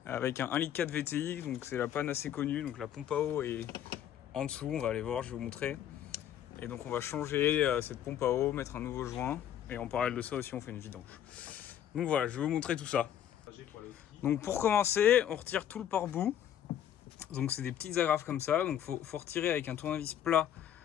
avec un 1,4 litre VTI, donc c'est la panne assez connue, donc la pompe à eau est en dessous, on va aller voir, je vais vous montrer. Et donc on va changer cette pompe à eau, mettre un nouveau joint, et en parallèle de ça aussi on fait une vidange. Donc voilà, je vais vous montrer tout ça. Donc pour commencer, on retire tout le pare-bout, donc c'est des petites agrafes comme ça, donc faut retirer avec un tournevis plat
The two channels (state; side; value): quieter; right; 10.3 dB